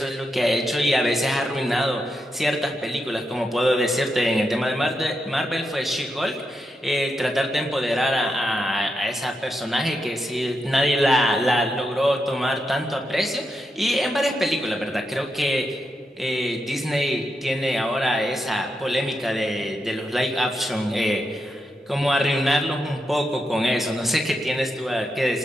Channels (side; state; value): both; normal; correlation 0.85